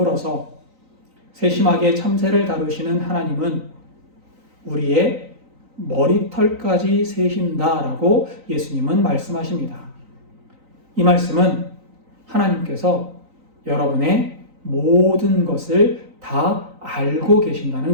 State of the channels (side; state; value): left; late; 3.9 ms